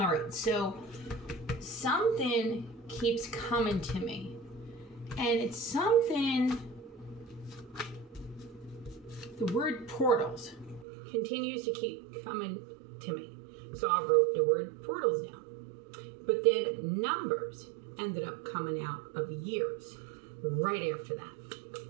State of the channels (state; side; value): drops out; left; at 10.9 s